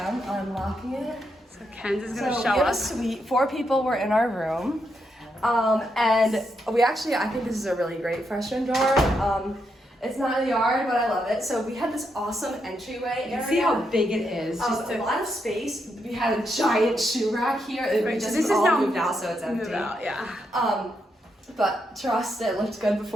unlocking it. So Kenzie's gonna show we have us. a suite. 4 people were in our room, and we actually, I think this is a really great freshman dorm. It's not in the yard, but I love it. So we had this awesome entryway area. See how big it is. A lot of space. We had a giant shoe rack here. Right, We just this is all now moved out, so it's empty. Move out, yeah. But trust, it looked good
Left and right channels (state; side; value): normal; both; correlation 0.81